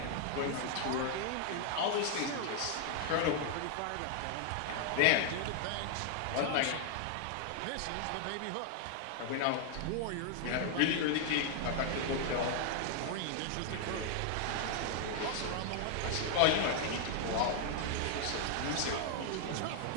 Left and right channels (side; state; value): both; different; correlation 0.00